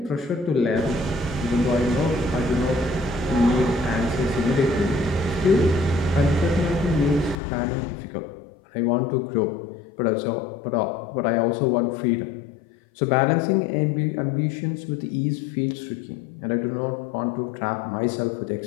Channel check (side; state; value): right; drops out; at 7.4 s